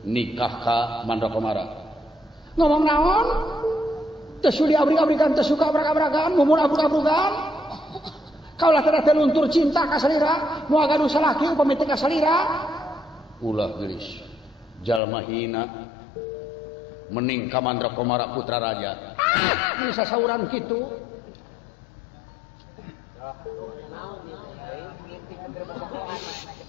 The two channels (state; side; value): drops out; right; at 15.0 s